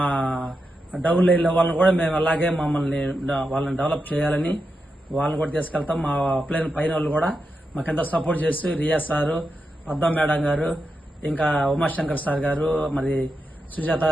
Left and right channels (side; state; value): both; normal; correlation 0.87